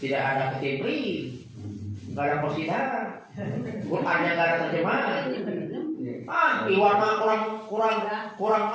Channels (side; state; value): both; identical; correlation 1.00